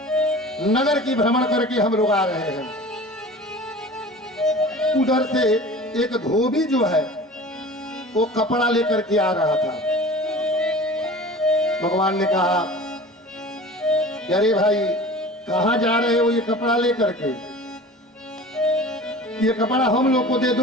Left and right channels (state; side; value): normal; both; correlation 0.39